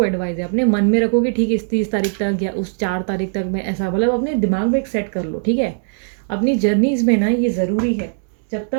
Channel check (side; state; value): left; silent; digital silence